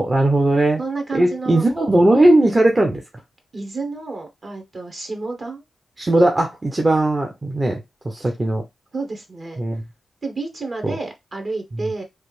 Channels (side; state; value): both; normal; correlation 0.95